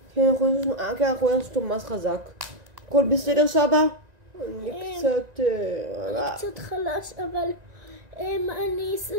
כן, אנחנו הנסנו אותו ממש חזק. הכל בסדר, סבא? אני קצת חלש, אבל אני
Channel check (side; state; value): left; late; 1.9 ms